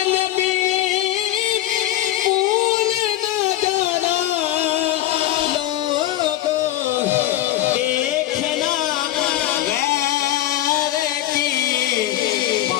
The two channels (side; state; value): right; quieter; 14.1 dB